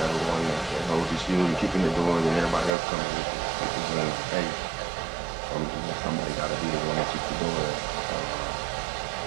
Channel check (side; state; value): left; drops out; at 2.7 s